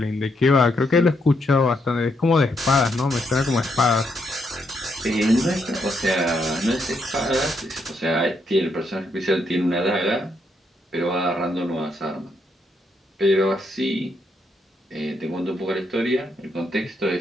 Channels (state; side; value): normal; both; correlation 0.77